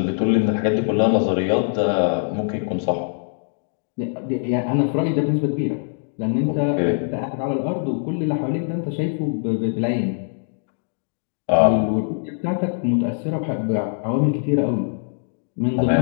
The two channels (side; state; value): right; silent; digital silence